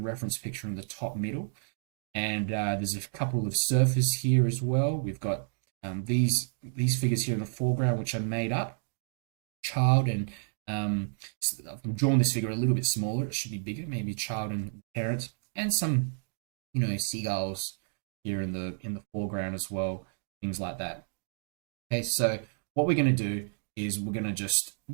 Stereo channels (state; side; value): silent; left; digital silence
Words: picture in the top middle. And there's a couple of surfers here as well. We've got these figures here in the foreground, which are made up. Child and I've drawn this figure a little bit smaller. It should be bigger, maybe child and parent, and some, seagulls here in the foreground as well, things like that. Okay, so what we're going to do is we're going to just,